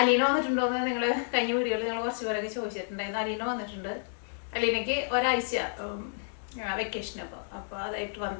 വന്നിട്ടുണ്ടോയെന്ന് നിങ്ങൾ കഴിഞ്ഞ വീഡിയോയിൽ നിങ്ങൾ കുറച്ച് പേരൊക്കെ ചോദിച്ചിട്ടുണ്ടായിരുന്നു. അലീന വന്നിട്ടുണ്ട്. അലീനയ്ക്ക് ഒരാഴ്ച വെക്കേഷൻ അപ്പോൾ അതായിട്ട്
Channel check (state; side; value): silent; right; 58 dB below the other